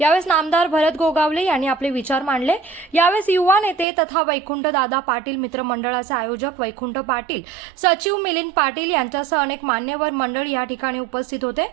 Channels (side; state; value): left; drops out; at 3.9 s